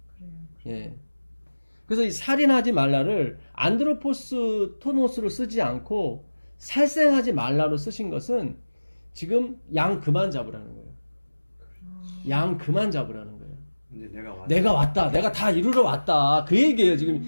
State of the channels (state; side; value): inverted; both; correlation -1.00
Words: 예. 그래서 이 살인하지 말라를 안드로포스 토노스로 쓰지 않고 살생하지 말라로 쓰신 것은 지금 양 그만 잡으라는 거예요. 양 그만 잡으라는 거예요. 이제 내가 왔다. 내가 다 이루러 왔다. 그 얘기예요. 지금